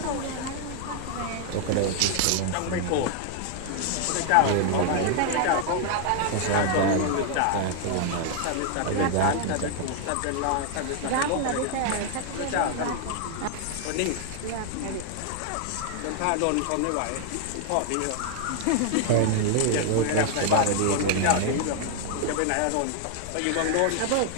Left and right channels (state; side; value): different; both; correlation 0.00